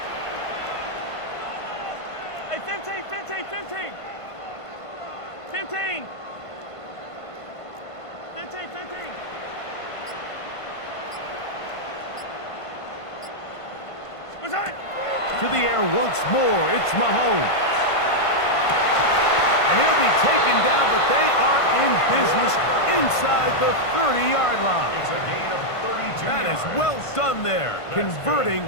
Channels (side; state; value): right; late; 1.5 ms